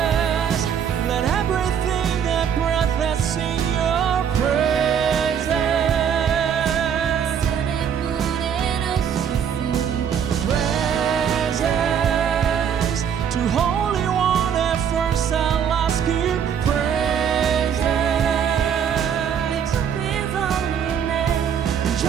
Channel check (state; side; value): quieter; left; 8.1 dB